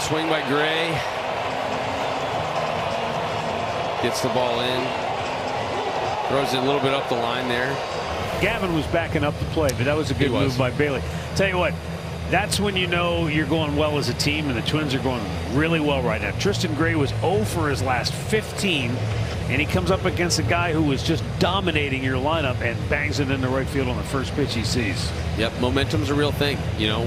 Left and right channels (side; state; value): both; identical; correlation 1.00